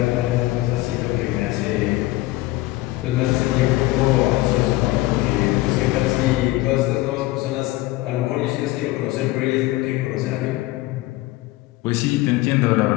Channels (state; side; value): quieter; right; 18.5 dB